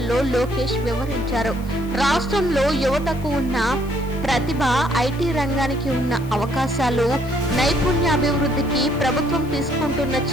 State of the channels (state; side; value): noise; left; hiss, 23 dB below the sound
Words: లోకేష్ వివరించారు. రాష్ట్రంలో యువతకు ఉన్న ప్రతిభ, ఐటీ రంగానికి ఉన్న అవకాశాలు, నైపుణ్యాభివృద్ధికి ప్రభుత్వం తీసుకుంటున్న